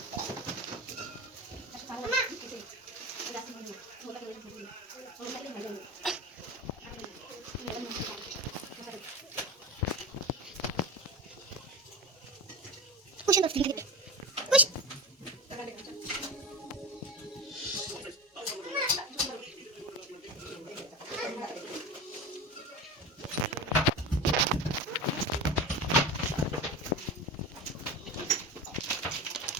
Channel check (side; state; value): both; normal; correlation 0.26